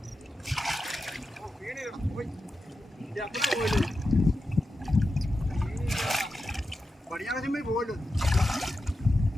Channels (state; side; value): normal; both; correlation 0.90